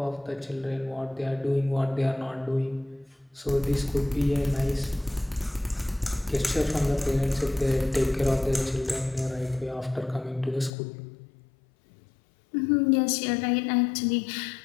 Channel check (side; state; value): right; drops out; at 10.7 s